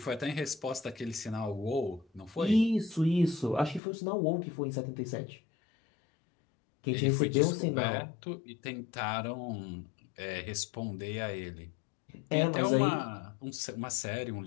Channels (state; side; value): drops out; right; at 3.8 s